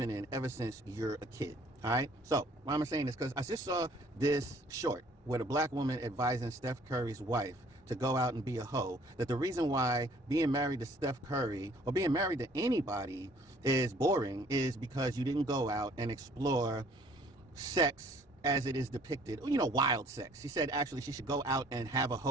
in ever since you're a kid. All right, so why am I saying this? Because I just saw this short with a black woman advising Steph Curry's wife to go out and be a hoe. That the reason why being married to Steph Curry or being married to anybody is boring is because you didn't go out and explore sex as it is depicted, wild sex. She said actually she should go out and have a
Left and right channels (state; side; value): normal; both; correlation 0.58